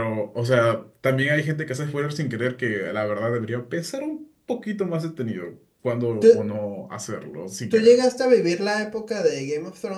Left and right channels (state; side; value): identical; both; correlation 1.00